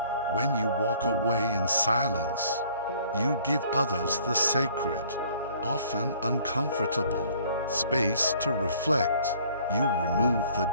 When you walk away in silence, you give others the sacred, often uncomfortable, space to reflect. You remove the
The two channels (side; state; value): both; inverted; correlation -0.57